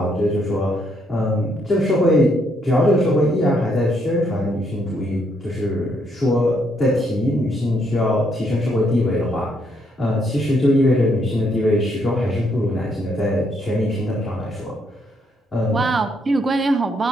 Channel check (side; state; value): both; normal; correlation 0.73